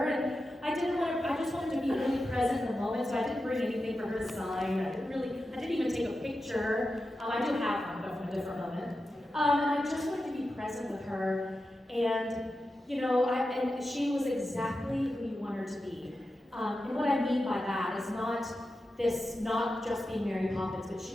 and I just wanted to be really present in the moment, so I didn't bring anything for her to sign. I didn't even take a picture. I do have one, but from a different moment. And I just wanted to be present with her, and, you know, and she was exactly who you want her to be. And what I mean by that is not just being Mary Poppins, but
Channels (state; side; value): normal; both; correlation 0.91